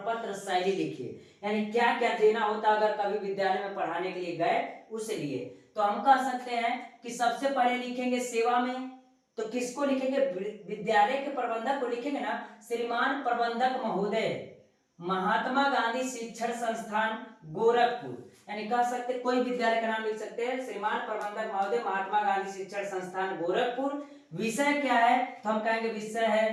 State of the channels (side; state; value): both; identical; correlation 1.00